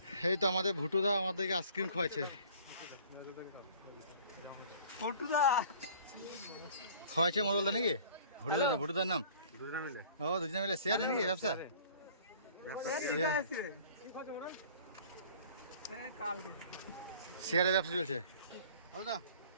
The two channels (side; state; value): both; inverted; correlation -0.50